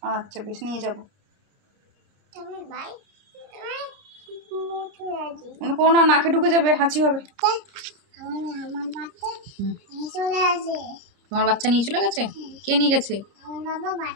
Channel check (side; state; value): left; late; 30 ms